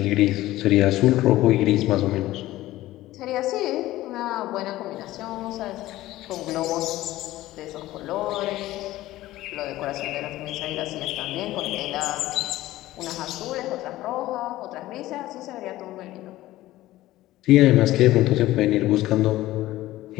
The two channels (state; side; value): quieter; right; 16.2 dB